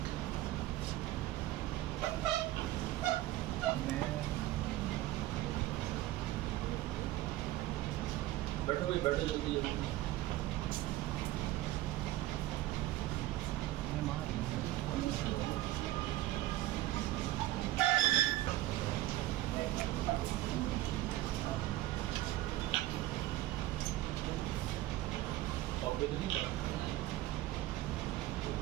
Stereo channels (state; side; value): quieter; left; 15.7 dB